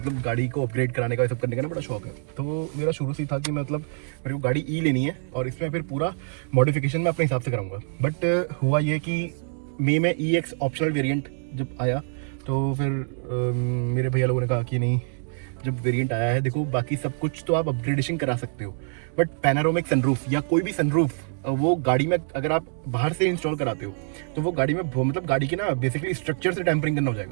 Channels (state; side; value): silent; left; 61 dB below the other